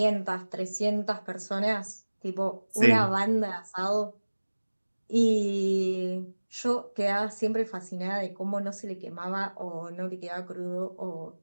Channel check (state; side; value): inverted; both; correlation -1.00